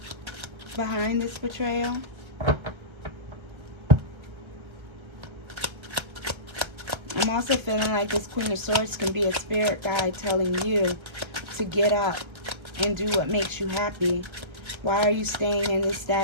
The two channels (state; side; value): late; left; 1.3 ms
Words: behind this betrayal. I'm also feeling like this Queen of Swords can be a spirit guide telling you to get up and do what makes you happy. Why are you staying in this